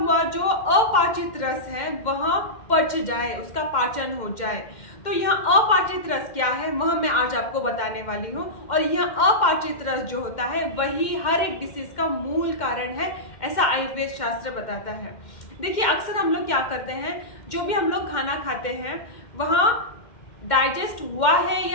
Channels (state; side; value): late; right; 2.1 ms